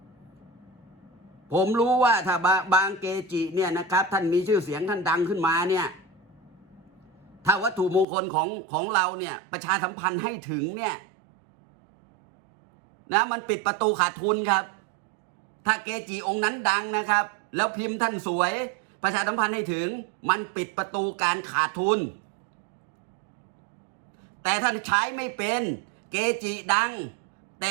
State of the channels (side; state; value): left; drops out; at 8.1 s